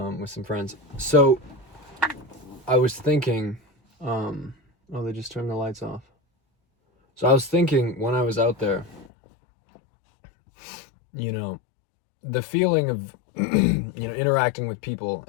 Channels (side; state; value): right; drops out; at 9.1 s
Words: some friends. So I was thinking, oh, they just turned the lights off. So I was thinking when I was out there, you know, the feeling of interacting with people